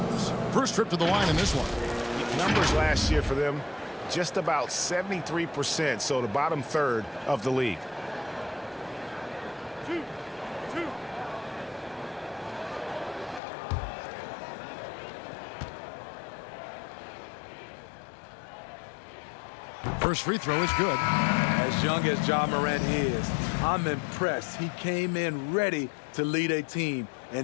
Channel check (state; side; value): drops out; right; at 13.4 s